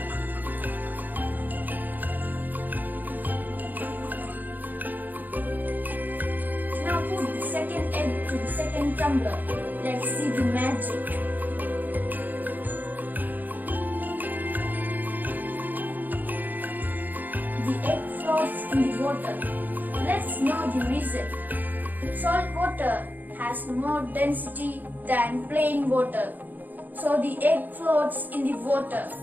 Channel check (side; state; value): left; late; 0.085 ms